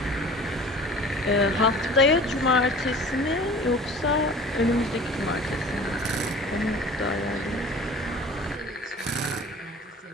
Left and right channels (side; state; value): both; normal; correlation 0.43